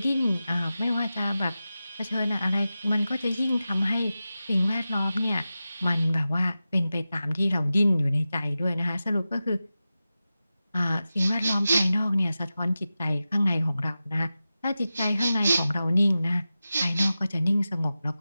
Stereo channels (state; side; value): inverted; both; correlation -0.94